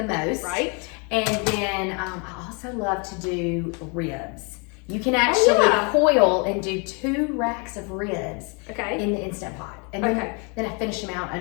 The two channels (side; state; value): right; quieter; 34.2 dB